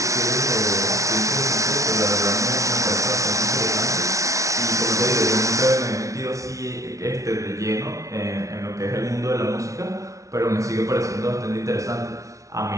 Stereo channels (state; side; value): late; left; 0.15 ms